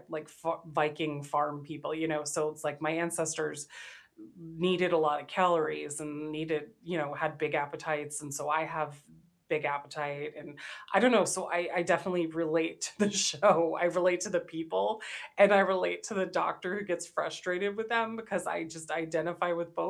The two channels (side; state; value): both; identical; correlation 1.00